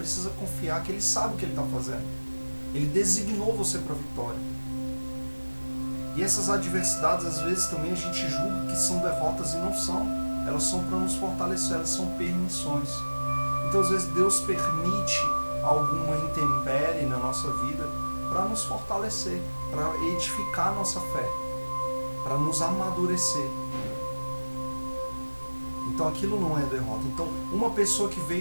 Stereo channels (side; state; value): both; inverted; correlation -1.00